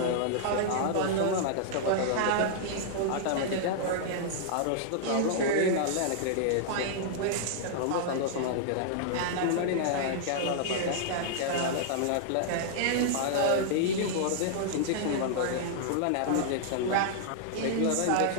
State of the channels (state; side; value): different; both; correlation -0.01